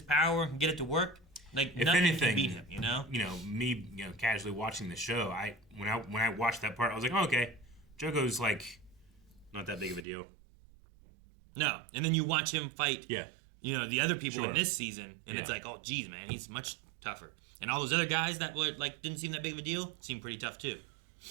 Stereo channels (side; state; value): left; drops out; at 10.1 s